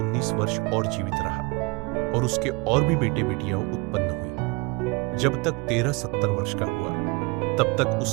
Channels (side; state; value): left; quieter; 27.2 dB